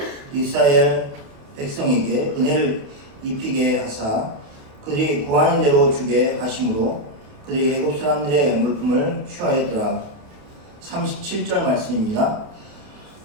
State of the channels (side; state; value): left; late; 28 ms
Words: 이스라엘 백성에게 은혜를 입히게 하사 그들이 구하는 대로 주게 하심으로 그들이 애굽 사람들의 물품을 취하였더라. 37절 말씀입니다.